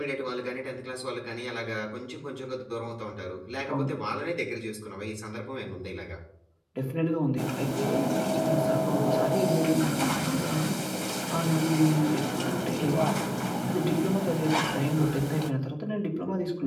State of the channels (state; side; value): identical; both; correlation 1.00